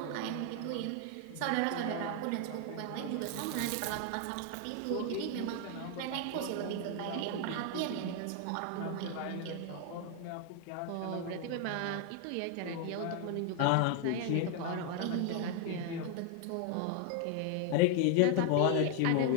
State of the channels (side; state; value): both; different; correlation 0.00